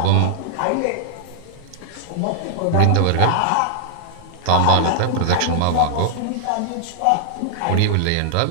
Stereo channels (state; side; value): different; both; correlation -0.01